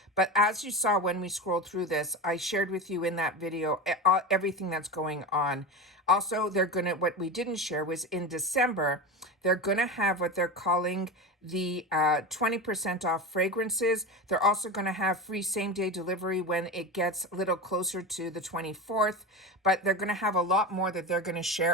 But as you saw when we scrolled through this, I shared with you in that video everything that's going on. Also, they're going to, what we didn't share was in December, they're going to have what they're calling the 20% off fragrances. They're also going to have free same-day delivery when it gets a little closer to the 24th. But they're going to have a lot more that they're going to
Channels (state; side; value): normal; both; correlation 0.24